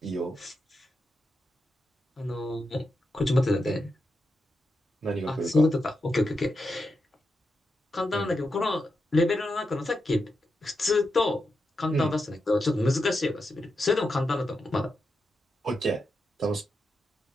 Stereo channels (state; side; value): normal; both; correlation 0.87